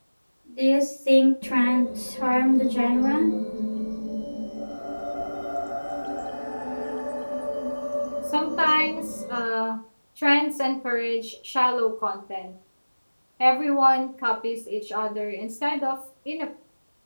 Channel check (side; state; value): both; inverted; correlation -1.00